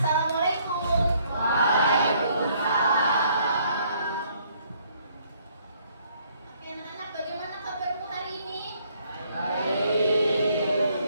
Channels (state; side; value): inverted; both; correlation -0.66